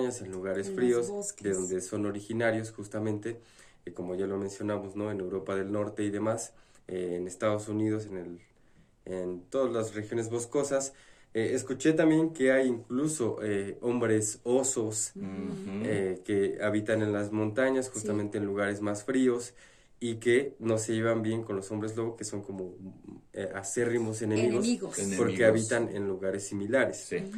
en lugares fríos, de donde son originarios justamente, como ya lo mencionamos, ¿no? En Europa del Norte y demás, en Estados Unidos, en todas las regiones boscosas. Escuché también que hay incluso hombres osos que habitan en las montañas, justamente en lugares más fríos, y que no se llevan bien con los hombres lobo, que son como acérrimos enemigos, porque habitan en lugares similares.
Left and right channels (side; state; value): both; identical; correlation 1.00